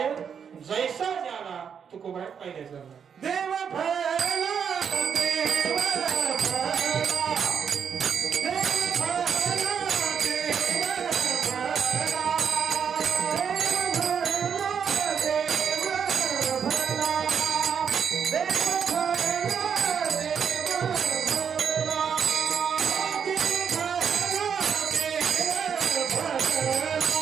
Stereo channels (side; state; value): left; quieter; 7.2 dB